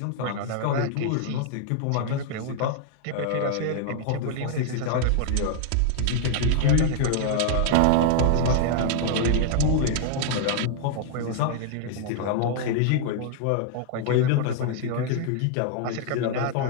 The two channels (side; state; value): both; different; correlation 0.00